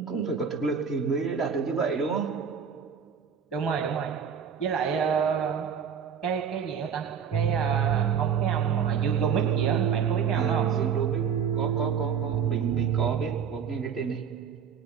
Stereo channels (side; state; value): left; quieter; 7.1 dB